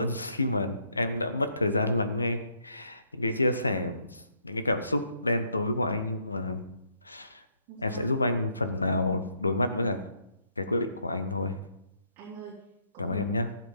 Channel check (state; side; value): inverted; both; correlation -0.71